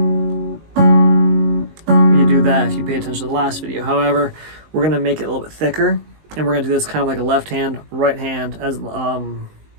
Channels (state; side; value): late; left; 19 ms